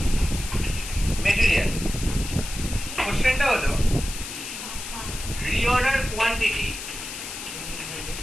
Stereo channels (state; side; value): noise; left; hiss, 8 dB below the sound